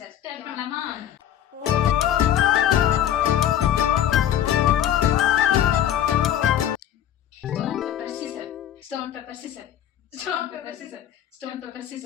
ஸ்டார்ட் பண்ணலாமா? Stone pepper scissor. Stone pepper scissor. Stone pepper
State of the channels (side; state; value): right; quieter; 10.9 dB